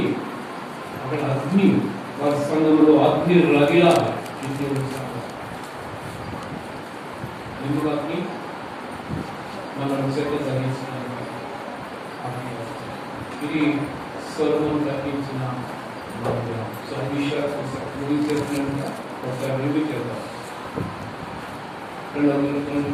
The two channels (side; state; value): both; identical; correlation 1.00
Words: అక్కడ అగ్ని. వారి సంఘంలో అగ్ని రగిలా. దేవుని సంఘం ఎందుకు అగ్ని? మనం చెత్త తగ్గించడానికి అగ్ని. ఇది సొలొమోను కట్టించిన మందిరం. సో ముగించేస్తున్నట్టుగా ఒకసారి రివ్యూ చేద్దాం.